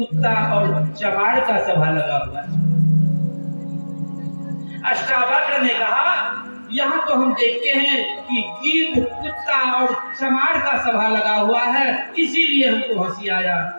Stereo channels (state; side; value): inverted; both; correlation -1.00